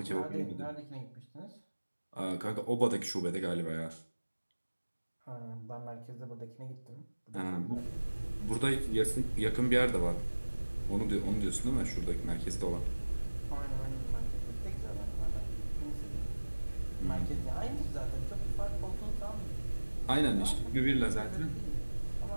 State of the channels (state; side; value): inverted; both; correlation -1.00